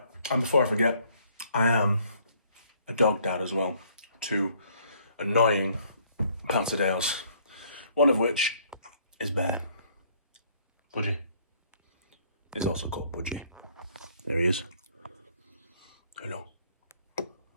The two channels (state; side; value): inverted; both; correlation -0.63